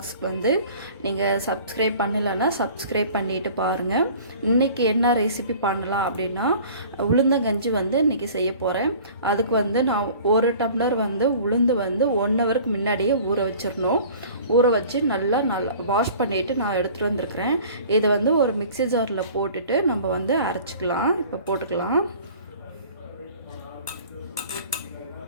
வந்து நீங்கள் சப்ஸ்கிரைப் பண்ணலைன்னா சப்ஸ்கிரைப் பண்ணிவிட்டு பாருங்கள். இன்றைக்கி என்ன ரெசிபி பண்ணலாம் அப்படின்னா, உளுந்தங்கஞ்சி வந்து இன்றைக்கி செய்ய போகிறேன். அதுக்கு வந்து நான் ஒரு டம்ளர் வந்து உளுந்து வந்து 1 ஹவருக்கு முன்னாடியே ஊற வச்சிடணும். ஊற வச்சு நல்லா வாஷ் பண்ணிவிட்டு நான் எடுத்துகிட்டு வந்திருக்கிறேன். இதை வந்து ஒரு மிக்ஸி ஜாரில் போட்டுட்டு நம்ம வந்து அரைச்சிக்கலாம். இப்போ போட்டுக்கலாம்.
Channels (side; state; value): both; inverted; correlation -0.46